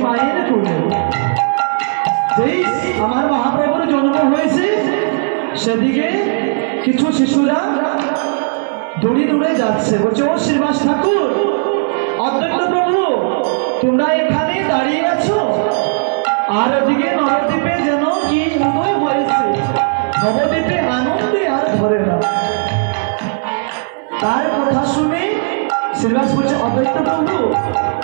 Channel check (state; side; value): silent; left; 64 dB below the other